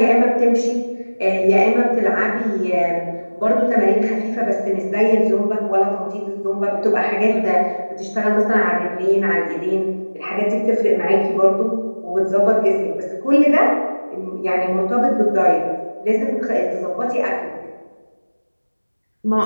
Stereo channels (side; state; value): both; inverted; correlation -1.00